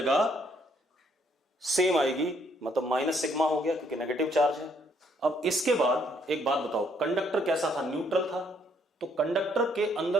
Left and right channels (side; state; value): both; normal; correlation 0.68